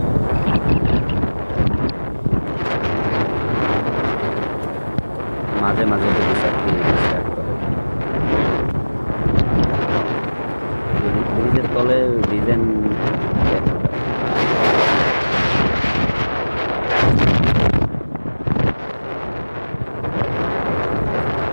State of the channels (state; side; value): inverted; both; correlation -1.00